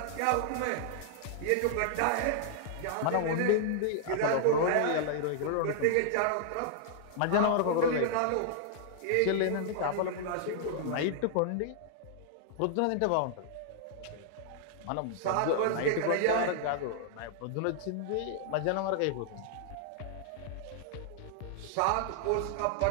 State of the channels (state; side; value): different; both; correlation -0.01